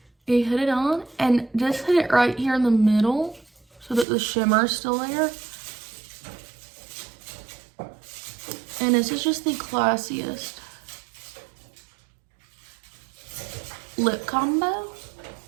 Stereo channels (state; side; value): drops out; left; at 4.0 s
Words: You hit it on and just hit it right here in the middle so that the shimmer is still there. And this is just the classiest lip combo.